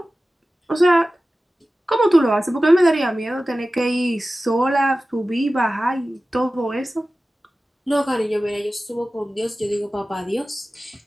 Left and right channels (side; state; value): both; normal; correlation 0.96